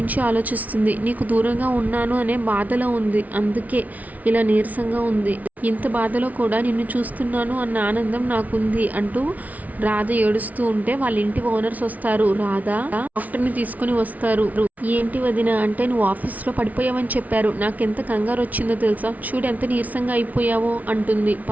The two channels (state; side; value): late; left; 0.073 ms